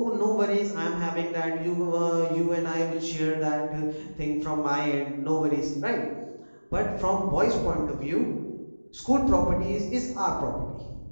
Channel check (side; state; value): both; inverted; correlation -1.00